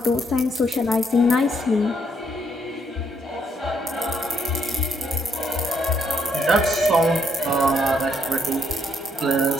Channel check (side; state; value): both; normal; correlation 0.72